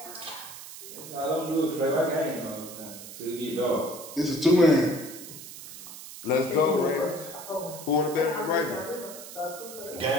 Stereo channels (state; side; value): noise; right; hiss, 13 dB below the sound